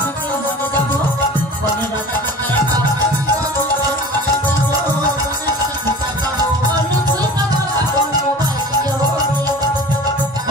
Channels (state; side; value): normal; both; correlation 0.39